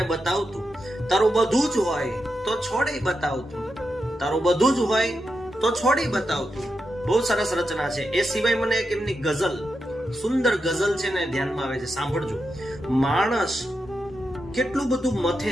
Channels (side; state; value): both; normal; correlation 0.87